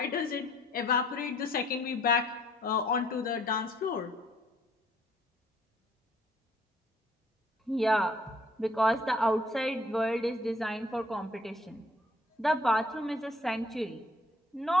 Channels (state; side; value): normal; both; correlation 0.61